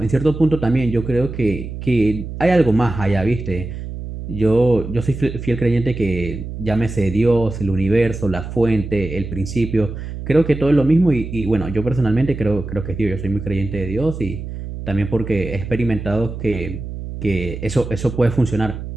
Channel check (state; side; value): noise; right; hum, 8 dB below the sound